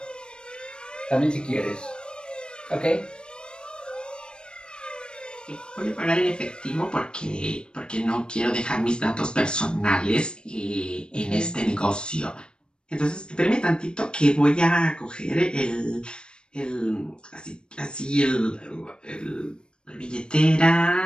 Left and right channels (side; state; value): right; late; 0.052 ms